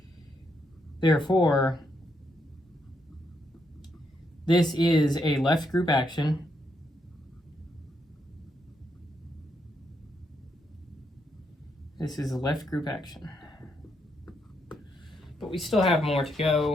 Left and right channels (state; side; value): normal; both; correlation 0.78